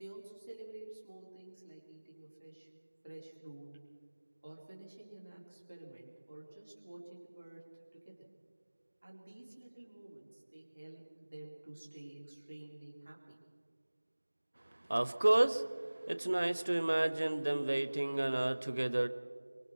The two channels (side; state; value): both; inverted; correlation -1.00